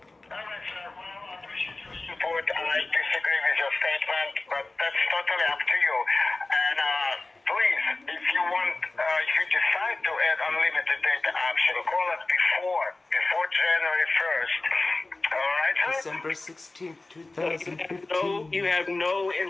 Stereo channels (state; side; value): quieter; right; 3.1 dB